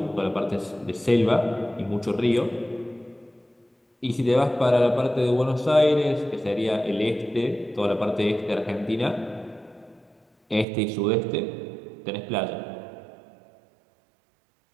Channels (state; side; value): drops out; left; at 10.7 s